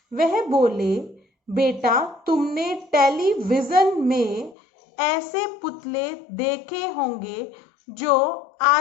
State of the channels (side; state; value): right; drops out; at 4.5 s